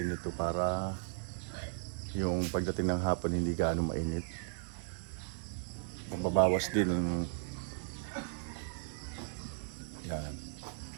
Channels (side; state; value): left; silent; 54 dB below the other